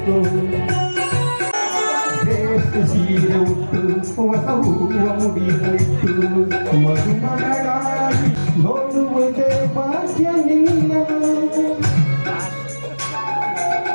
ಸೀರೆ ಉಟ್ಟು ಹೊಸ ಹೂವ ಮುಡಿಯಿಟ್ಟು ಮದುಮಗಳಾಗಿ ನೋಡುವುದೇ ಭಾಗ್ಯ ನಿನ್ನ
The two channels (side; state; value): both; inverted; correlation -1.00